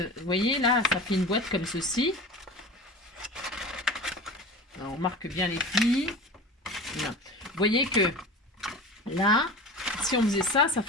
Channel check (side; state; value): both; normal; correlation 0.34